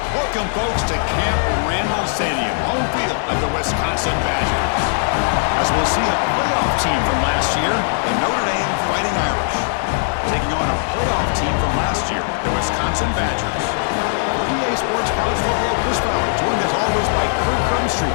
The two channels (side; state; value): right; silent; 56 dB below the other